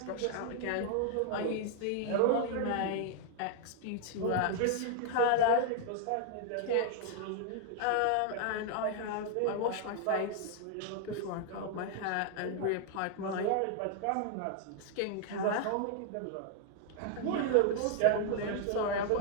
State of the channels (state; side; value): different; both; correlation 0.00